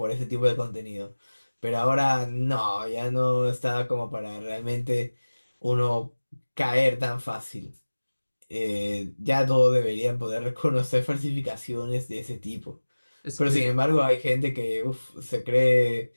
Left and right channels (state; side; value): inverted; both; correlation -1.00